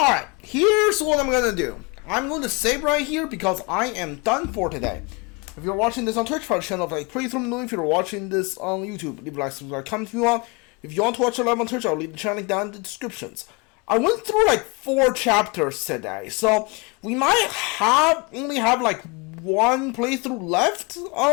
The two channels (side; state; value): right; quieter; 28.7 dB